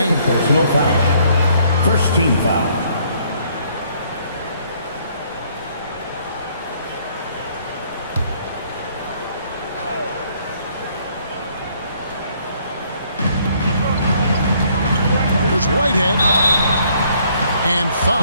Personal foul. First team foul. Whitehead, and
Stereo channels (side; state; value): both; inverted; correlation -0.65